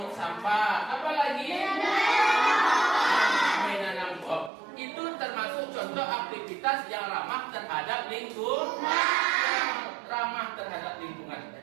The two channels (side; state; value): left; drops out; at 4.5 s